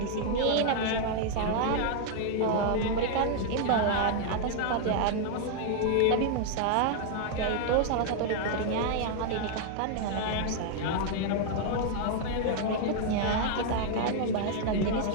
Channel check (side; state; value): both; different; correlation 0.00